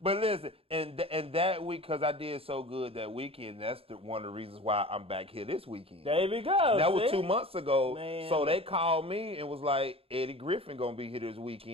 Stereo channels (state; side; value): late; left; 0.27 ms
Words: But listen, and that week, because I did so good that weekend, that's one of the reasons why I'm back here this weekend. There we go. That was 2 months ago. Man. So they called me and was like, Eddie Griffin gonna be here this